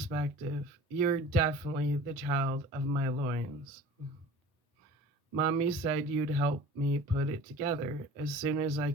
You're definitely the child of my loins. Mommy said you'd help me put it together as soon as I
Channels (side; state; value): both; normal; correlation 0.42